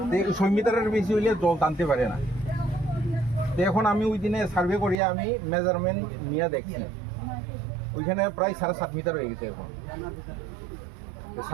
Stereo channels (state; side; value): drops out; left; at 5.0 s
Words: 6 মিটারের বেশি হইলে জল টানতে পারে না তো এখন আমি ওই দিনে সার্ভে করিয়া আমি মেজারমেন্ট নিয়ে দেখছি ওইখানে প্রায় 7.5 মিটার হয়ে গেছে এখন